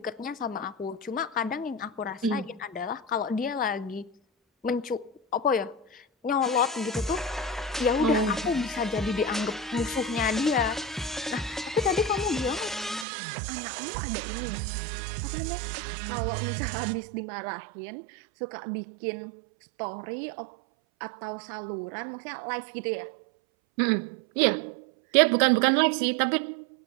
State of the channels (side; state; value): left; drops out; at 13.1 s